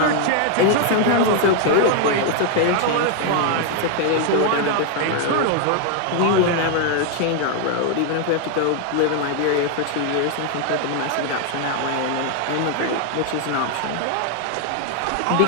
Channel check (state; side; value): different; both; correlation 0.00